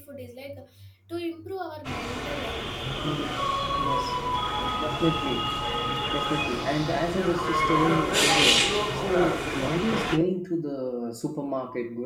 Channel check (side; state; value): both; identical; correlation 1.00